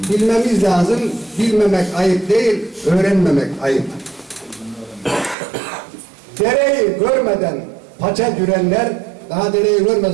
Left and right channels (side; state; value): left; drops out; at 5.4 s